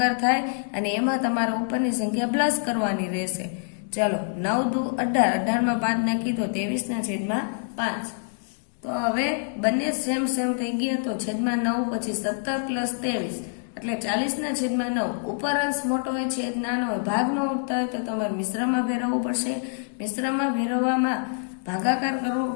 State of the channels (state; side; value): silent; right; digital silence